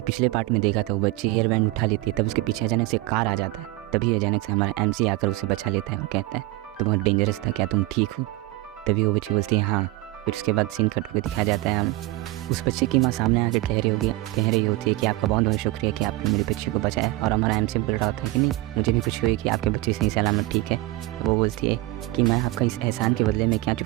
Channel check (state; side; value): quieter; left; 19.8 dB